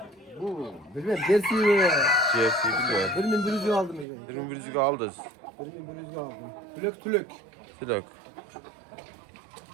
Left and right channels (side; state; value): left; drops out; at 4.0 s